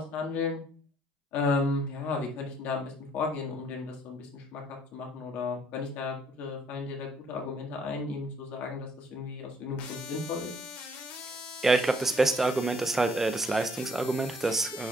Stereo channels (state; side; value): normal; both; correlation 0.64